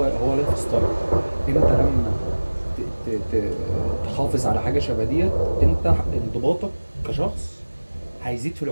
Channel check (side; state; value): both; inverted; correlation -1.00